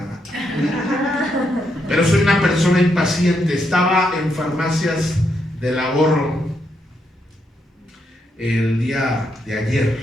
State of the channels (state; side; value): normal; both; correlation 0.79